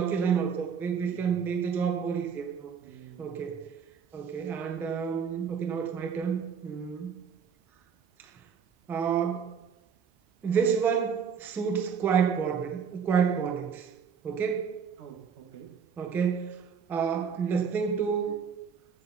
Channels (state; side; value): quieter; left; 6.8 dB